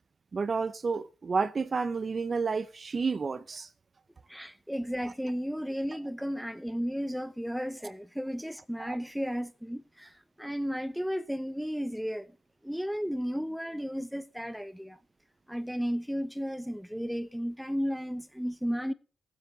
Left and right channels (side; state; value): both; normal; correlation 0.97